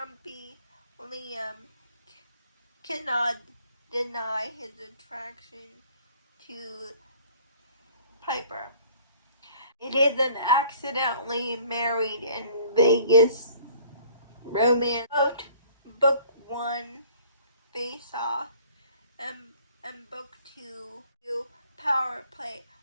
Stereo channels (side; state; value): both; inverted; correlation -0.55